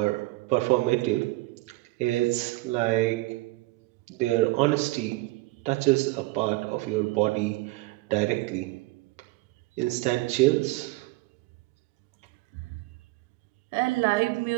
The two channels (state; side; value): quieter; left; 20.8 dB